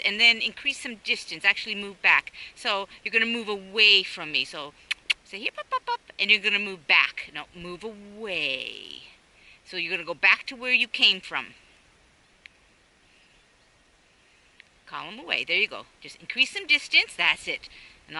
and then increase some distance, actually move back. So you're going to move away from me. So say here, up, up, up, and you're going to move back. No, move away. So you're going to go back to where you came from. Call him away. There you go. Just increase some distance. That's it. And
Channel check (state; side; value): identical; both; correlation 1.00